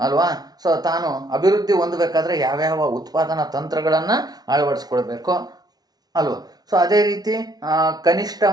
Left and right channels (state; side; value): late; left; 0.19 ms